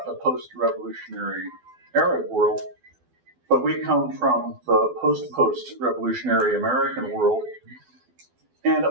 the post-revolutionary Arab world, but we come from the post-revolutionary American world, and it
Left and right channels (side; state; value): left; late; 12 ms